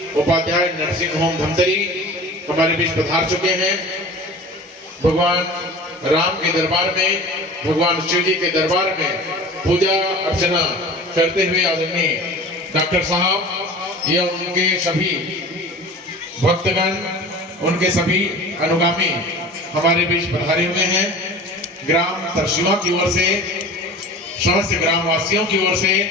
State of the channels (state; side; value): normal; both; correlation 0.39